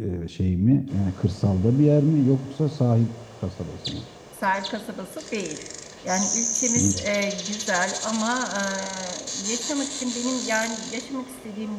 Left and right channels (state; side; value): identical; both; correlation 1.00